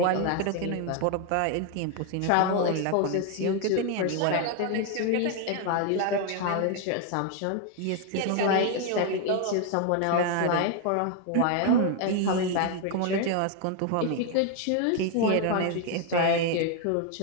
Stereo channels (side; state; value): both; different; correlation 0.01